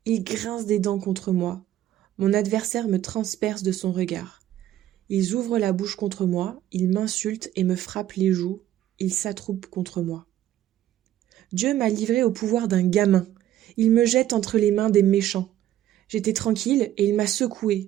Il grince des dents contre moi. Mon adversaire me transperce de son regard. Ils ouvrent la bouche contre moi, ils m'insultent et me frappent les joues, ils s'attroupent contre moi. Dieu m'a livré au pouvoir d'un gamin. Il me jette entre les mains des méchants. J'étais tranquille et il m'a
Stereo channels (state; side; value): quieter; left; 12.6 dB